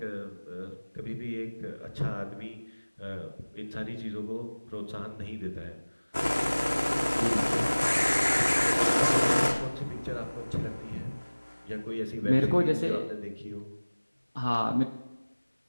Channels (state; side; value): inverted; both; correlation -1.00